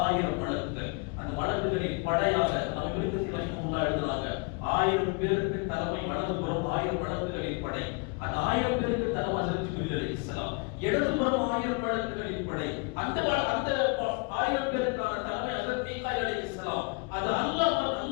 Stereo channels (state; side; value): quieter; right; 31.6 dB